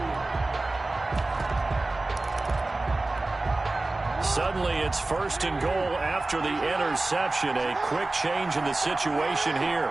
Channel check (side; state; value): left; quieter; 3.0 dB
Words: Suddenly it's 1st and goal after the interception. A quick change in the situation